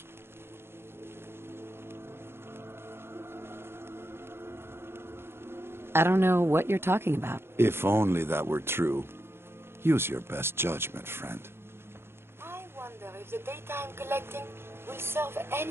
I don't know what you're talking about. If only that were true. Use your best judgment, friend. I wonder if the data I'm collecting will serve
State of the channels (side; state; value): left; late; 0.12 ms